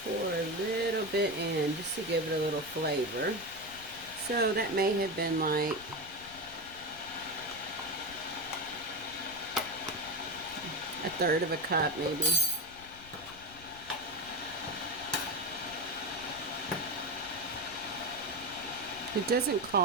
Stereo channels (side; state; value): left; noise; rumble, 20 dB below the sound